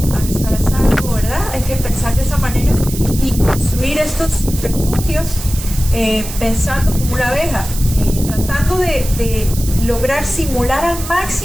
van a estar a salvo, ¿verdad? Hay que pensar de esa manera y construir estos refugios pensando como una abeja, tratando de lograr simular al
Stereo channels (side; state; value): right; noise; hiss, 10 dB below the sound